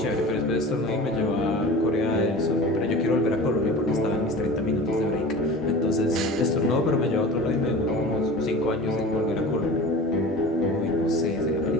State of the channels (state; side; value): normal; both; correlation 0.37